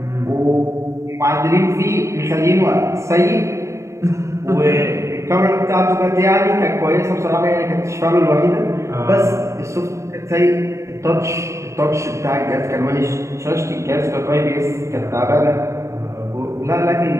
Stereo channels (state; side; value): late; left; 0.14 ms